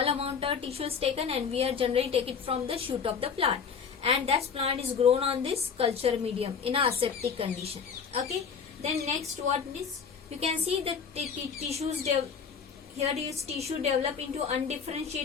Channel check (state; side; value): quieter; right; 6.3 dB